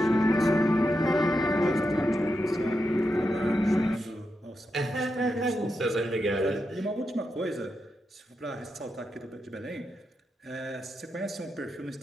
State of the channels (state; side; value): normal; both; correlation 0.86